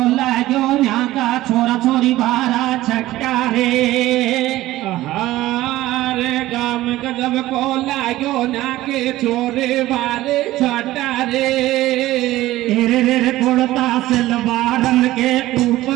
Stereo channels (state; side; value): quieter; left; 16.2 dB